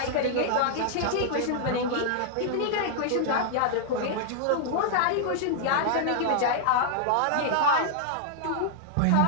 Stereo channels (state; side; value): different; both; correlation -0.01